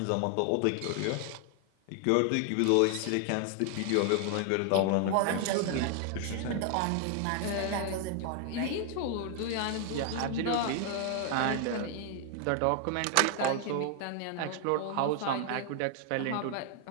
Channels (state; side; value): different; both; correlation 0.00